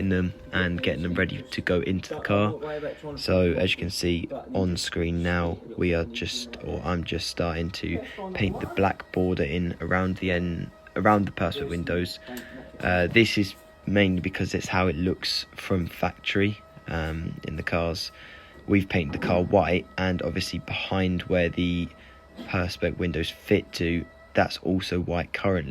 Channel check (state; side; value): identical; both; correlation 1.00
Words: them and getting them ready to go into the car. So as you can see on screen now, I'm just starting to paint the black border in around the perspex windows. This is mainly because it's how it looks from factory in the cars. We've painted the car white, and obviously behind where the perspex windows fit to, that's also white